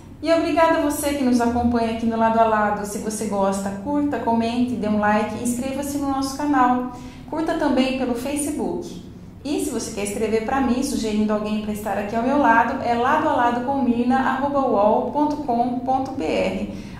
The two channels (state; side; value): identical; both; correlation 1.00